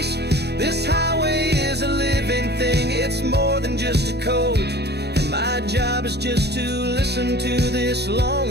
This highway is a living thing, it's more than just a code. And my job is just to listen to this long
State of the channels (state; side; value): late; left; 0.48 ms